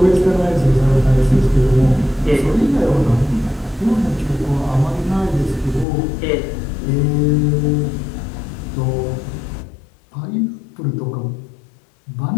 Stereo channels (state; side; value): drops out; right; at 5.9 s